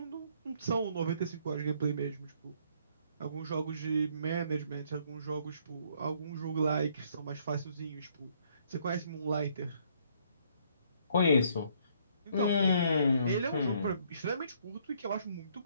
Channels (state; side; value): inverted; both; correlation -0.66